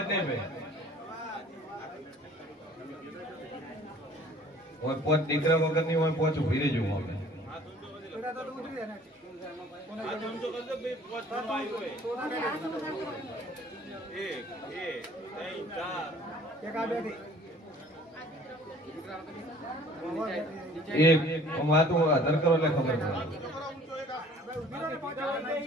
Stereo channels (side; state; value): both; normal; correlation 0.52